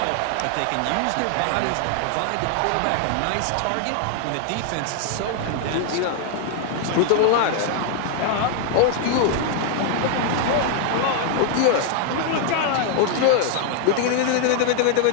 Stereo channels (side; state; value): both; different; correlation 0.00